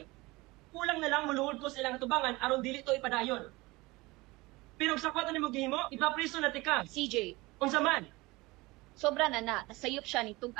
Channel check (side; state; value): left; quieter; 22.0 dB